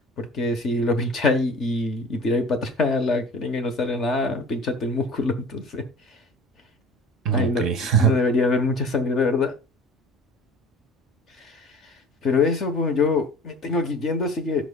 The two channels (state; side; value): normal; both; correlation 0.43